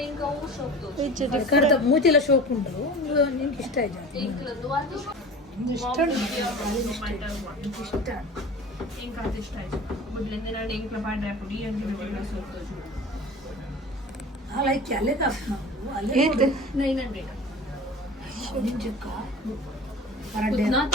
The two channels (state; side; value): normal; both; correlation 0.38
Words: ఇంకా షోಕ್ದು Which ಕಡ್ದ different. ಮೂತಿಲ ಶೋಕ್ ಉಂಟು ನಿನ್ಗೆ ಇಷ್ಟ ಆಯ್ತು ಪಿಂಕ್ಲದ್ದು ಅದು ಇಷ್ಟ ಇಷ್ಟ ఇంకా అది ఇಷ್ಟ ಆಯ್ತು ಬುಡ್ಲಿಂದ ನಾನು ಇಂಕ್ಲ ಪಾಡ್ರೆ ಪುಡಿ ಅಂತ ಬಿಟ್ಟು ಸೋತು ಲೈಕ್ ಅಲ್ಲೇ ಕಾಸು ನಾವು ಅಲ್ಲೇ Eight. 900 ನಿಂಜಕ್ಕ ಪರಡೆ ನಾತ